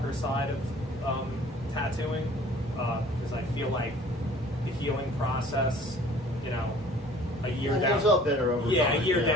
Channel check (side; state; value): both; normal; correlation 0.51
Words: side of tattooing, because I feel like the healing process, a year down, up better over time. A year